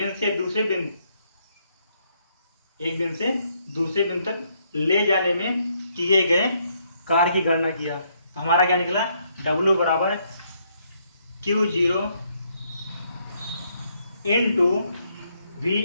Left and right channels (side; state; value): both; inverted; correlation -0.72